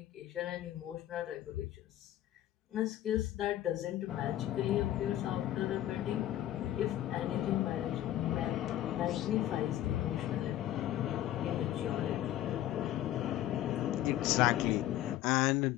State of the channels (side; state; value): right; quieter; 13.1 dB